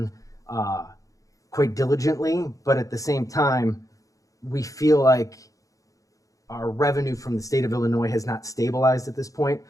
quite diligently, but at the same time, we feel like our revenue from the state of Illinois has not stabilized at this point.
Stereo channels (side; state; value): right; late; 0.16 ms